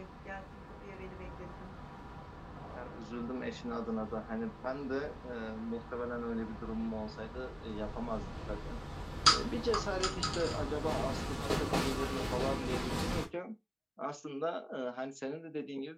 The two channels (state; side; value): identical; both; correlation 1.00